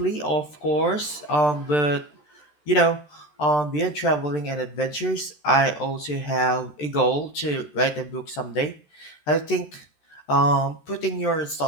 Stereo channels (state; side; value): late; right; 13 ms